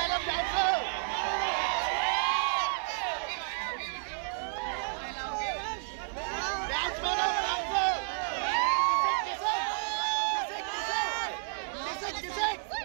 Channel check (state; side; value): silent; left; 57 dB below the other